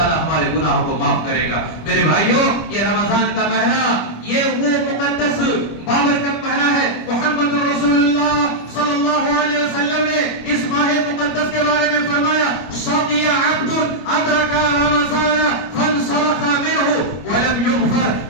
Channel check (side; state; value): right; late; 25 ms